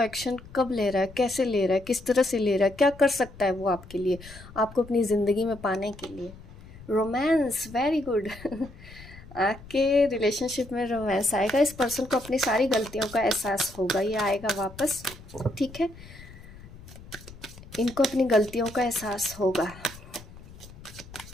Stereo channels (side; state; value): left; noise; rumble, 18 dB below the sound